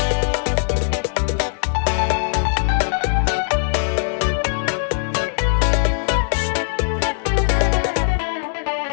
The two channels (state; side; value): silent; right; digital silence